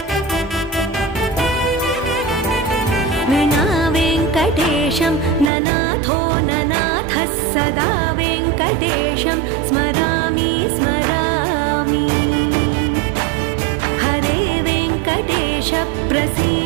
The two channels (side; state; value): left; drops out; at 5.5 s